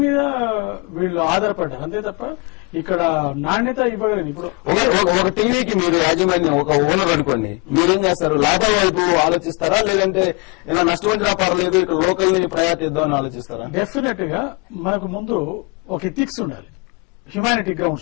మీద వీళ్ళు ఆధారపడ్డారు. అంతే తప్ప ఇక్కడ నాణ్యత ఇవ్వలేదు. ఇప్పుడు ఒక టీవీకి మీరు యాజమాన్యం, ఒక ఓనర్ అనుకోండి, మీరేం చేస్తారు? లాభం వైపు ఆలోచిస్తారా, లేదంటే ఇలా నష్టం వచ్చినా పర్లేదు ఇక్కడ లోకల్ ని ప్రయారిటీ ఇద్దామని ఆలోచిస్తారా? డెఫినెట్ గా మనకు ముందు ఒక ఎథిక్స్ ఉండాలి, హ్యుమానిటీ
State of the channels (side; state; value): right; quieter; 30.0 dB